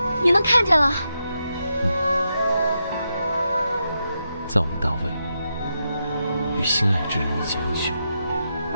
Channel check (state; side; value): inverted; both; correlation -0.85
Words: 你能看见了？在我们大魏，与心爱之人一见一雪，